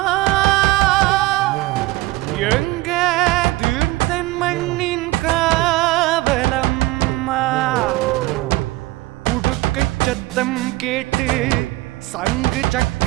எங்க தீர்த்தன் மண்ணின் காவலம்மா உடுக்கை சத்தம் கேட்டு சங்கு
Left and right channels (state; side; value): quieter; left; 19.4 dB